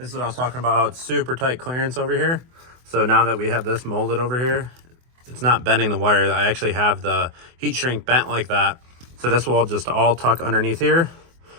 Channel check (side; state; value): left; late; 24 ms